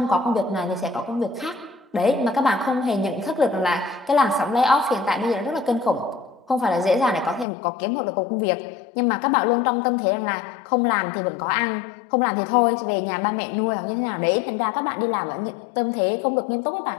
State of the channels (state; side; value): drops out; right; at 7.5 s